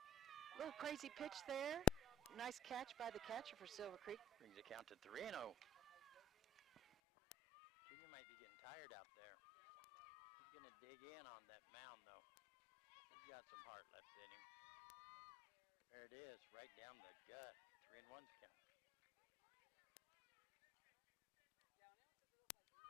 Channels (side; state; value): right; drops out; at 6.8 s